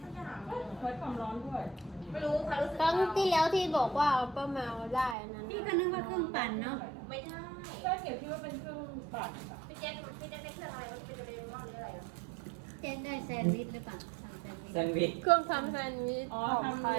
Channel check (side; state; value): left; drops out; at 5.2 s